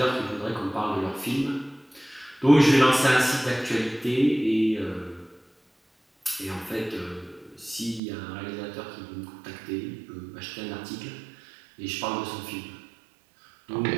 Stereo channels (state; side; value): drops out; left; at 8.0 s